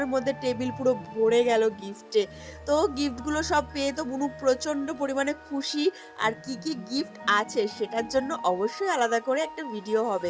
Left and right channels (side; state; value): both; identical; correlation 1.00